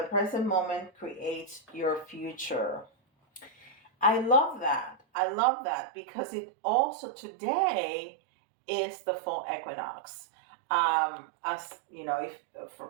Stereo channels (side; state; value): left; drops out; at 5.0 s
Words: present moment creates your future. I love that. I love that because it also today is the fall equinox. As you know, if